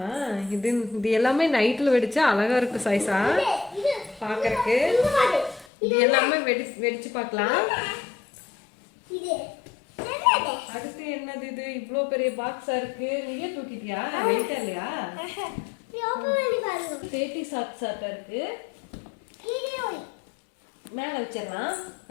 இது எல்லாமே நைட்ல வெடிச்சா அழகா இருக்கு சாய்ஸா பாக்குறதுக்கு. இது எல்லாமே வெடிச்சு பார்க்கலாம். அடுத்து என்னது? இது இவ்வளோ பெரிய பாக்ஸா இருக்கு. நீயே தூக்கிட்டியா? வெயிட்டா இல்லையா? சேட்டி சாப்பிட்டா இருக்கு. மேல வச்சிடலாம்,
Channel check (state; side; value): drops out; right; at 5.7 s